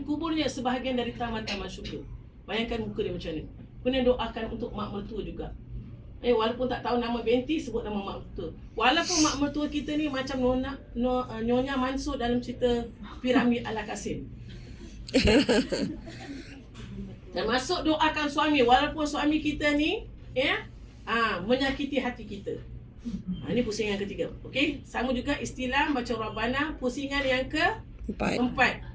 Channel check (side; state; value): both; identical; correlation 1.00